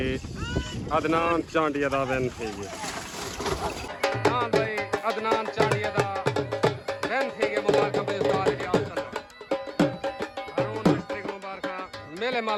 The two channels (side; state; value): both; identical; correlation 1.00